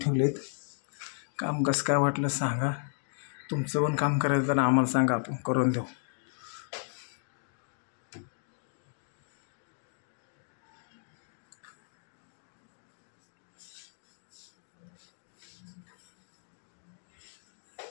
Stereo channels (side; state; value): right; silent; digital silence